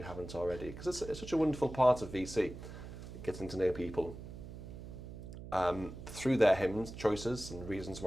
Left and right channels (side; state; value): right; noise; hum, 11 dB below the sound